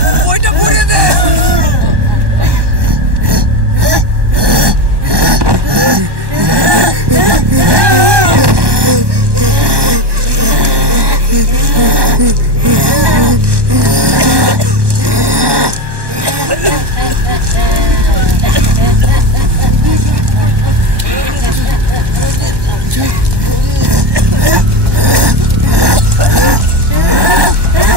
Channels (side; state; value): left; late; 1.1 ms